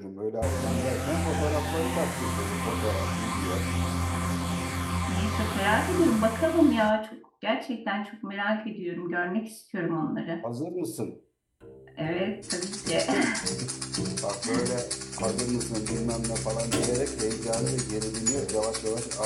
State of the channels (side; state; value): both; identical; correlation 1.00